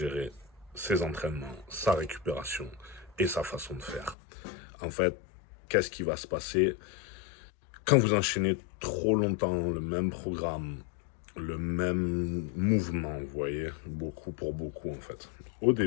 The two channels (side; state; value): right; drops out; at 4.2 s